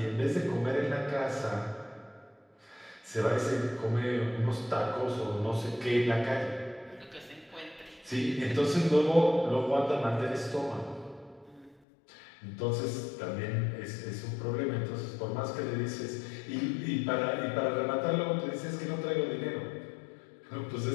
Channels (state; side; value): drops out; right; at 11.8 s